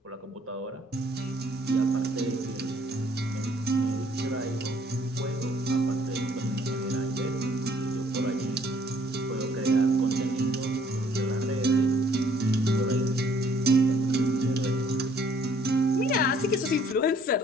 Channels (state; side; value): normal; both; correlation 0.61